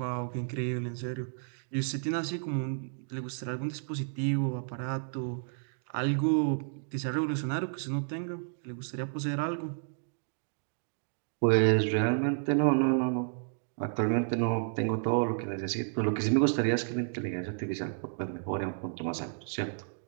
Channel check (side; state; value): left; silent; digital silence